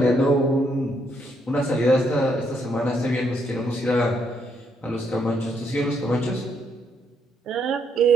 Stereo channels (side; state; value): both; normal; correlation 0.74